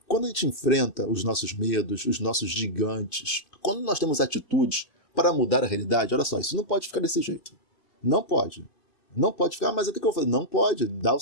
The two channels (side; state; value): right; late; 2.6 ms